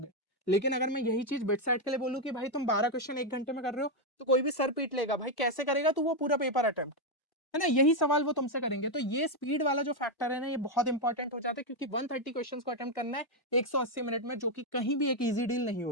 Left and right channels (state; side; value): late; right; 1.1 ms